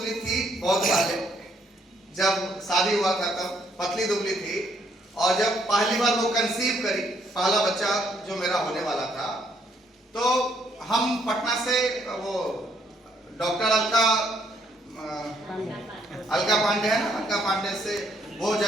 थी बहुत पहले, जब शादी हुआ था तब पतली दुबली थी, और जब पहली बार वो कंसीव करी, पहला बच्चा जो मेरा होने वाला था, तो हम पटना से वो डॉक्टर अलका पांडे है ना, अलका पांडे से, वो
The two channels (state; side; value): normal; both; correlation 0.70